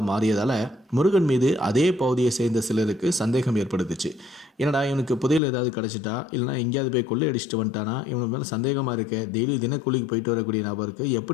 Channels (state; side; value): drops out; right; at 5.4 s